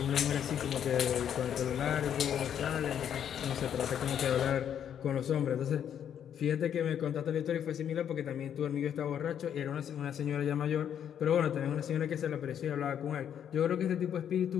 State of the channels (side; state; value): right; quieter; 9.1 dB